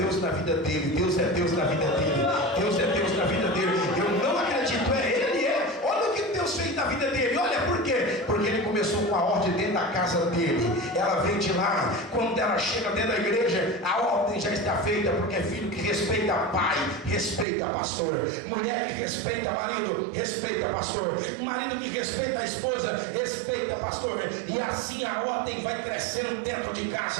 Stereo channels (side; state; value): left; drops out; at 17.4 s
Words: na vida dele, Deus é Deus na vida dele, Deus é Deus na vida dele. Eu não acredito, ele é. Olha o que Deus fez na vida dele. Olha por quê? Porque ele começou com a ordem dentro da casa dele. Ela vem de lá. Quando ela chega dentro da igreja, a ordem já está feita, porque é filho que respeita pai, respeita pastor. Mulher que respeita marido, respeita pastor. Marido que respeita a esposa, respeita pastor. E assim a ordem vai crescendo dentro de